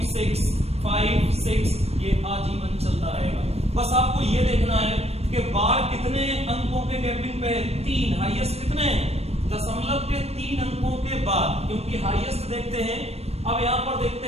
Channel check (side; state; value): left; late; 0.30 ms